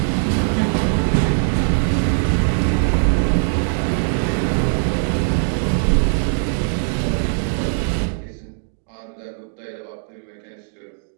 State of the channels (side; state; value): left; silent; digital silence